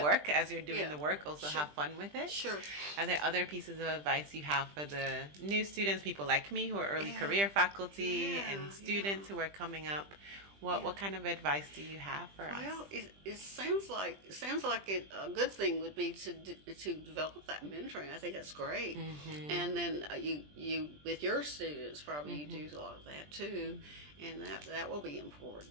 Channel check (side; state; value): left; late; 20 ms